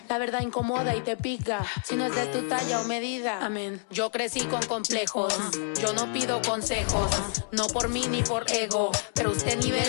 la verdad incomoda y te pica. Si no es de tu talla o medida, amén. Yo crecí con complejos, yo no pido consejos, no por mí ni por ego, pero usted ni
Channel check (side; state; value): right; silent; digital silence